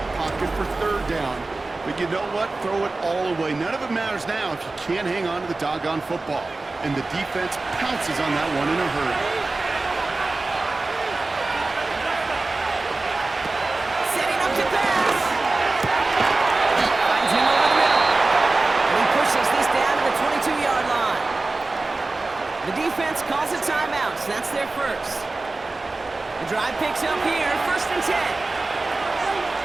pocket for third down. But you know what? Throw it all away. None of it matters now if you can't hang on to the doggone football. And the defense pounces on that one in a hurry. Setting up to pass. Finds him over the middle. And he pushes this down to the 22-yard line. The defense calls a timeout, so that's their first. The drive picks up here, 1st and 10.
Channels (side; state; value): left; quieter; 3.3 dB